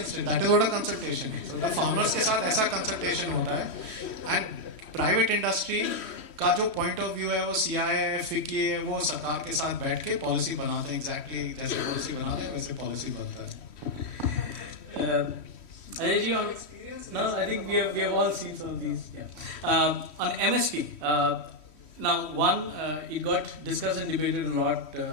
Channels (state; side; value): late; right; 3.1 ms